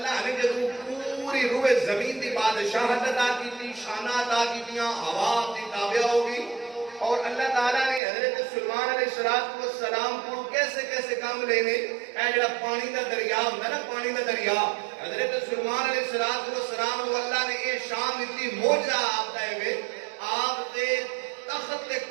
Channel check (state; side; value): drops out; left; at 8.0 s